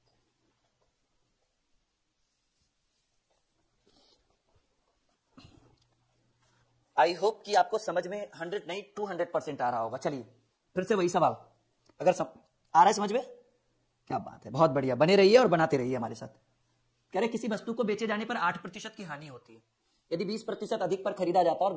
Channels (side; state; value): both; identical; correlation 1.00